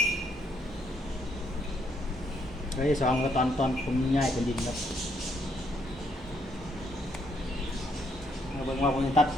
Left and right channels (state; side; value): normal; both; correlation 0.73